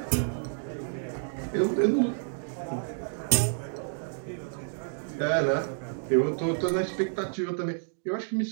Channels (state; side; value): silent; left; digital silence